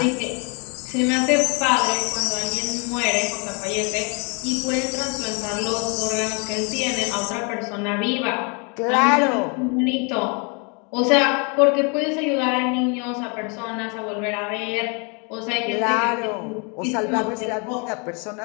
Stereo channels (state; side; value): quieter; right; 33.7 dB